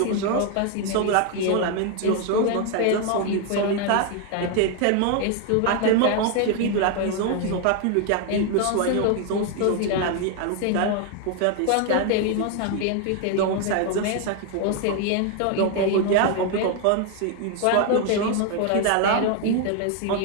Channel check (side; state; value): both; different; correlation 0.01